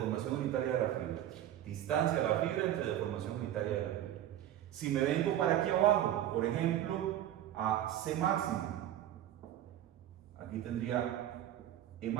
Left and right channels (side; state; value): left; quieter; 12.0 dB